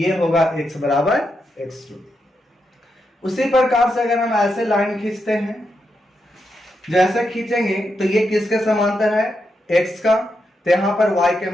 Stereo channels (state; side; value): normal; both; correlation 0.84